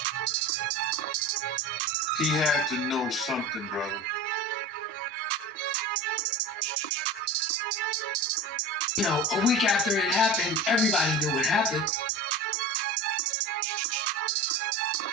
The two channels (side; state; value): both; normal; correlation 0.32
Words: He had to know something, brother. A week after it happened, everybody knew it happened.